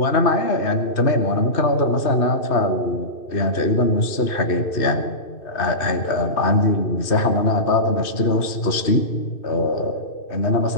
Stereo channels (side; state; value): right; late; 2.6 ms